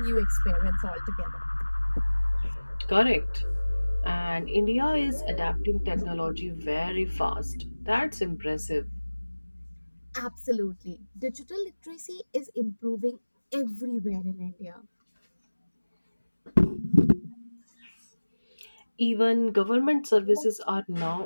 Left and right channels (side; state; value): both; inverted; correlation -1.00